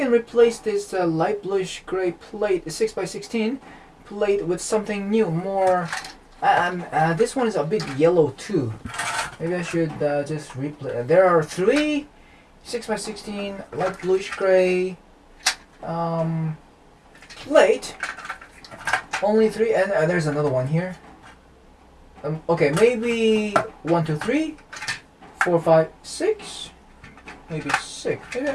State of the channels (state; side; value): identical; both; correlation 1.00